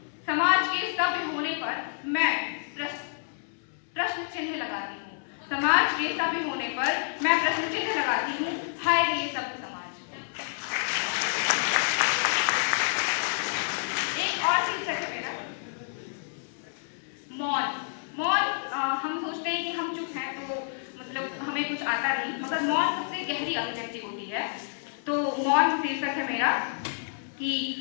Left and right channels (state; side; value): silent; right; 59 dB below the other